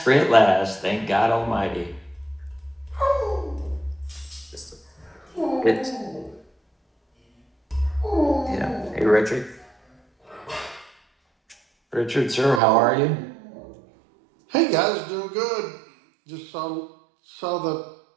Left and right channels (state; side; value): drops out; left; at 12.6 s